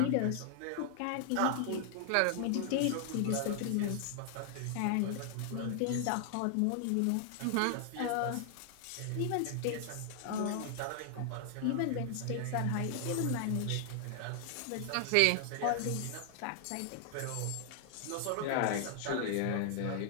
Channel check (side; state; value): both; different; correlation 0.00